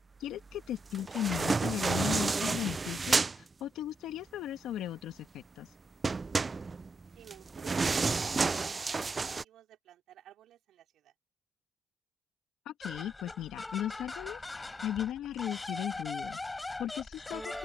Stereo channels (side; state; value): both; normal; correlation 0.80